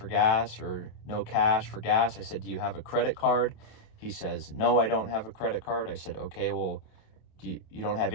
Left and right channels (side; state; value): right; late; 27 ms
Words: gas or no cash for gas. I said, do you have a credit card? He says, no, I don't have a credit card. I said, okay, well, do you have